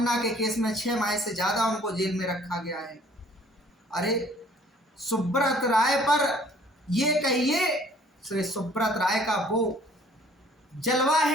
के केस में 6 माह से ज़्यादा उनको जेल में रखा गया है। अरे सुब्रत राय पर ये कहिए, श्री सुब्रत राय का वो जलवा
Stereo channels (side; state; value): both; normal; correlation 0.56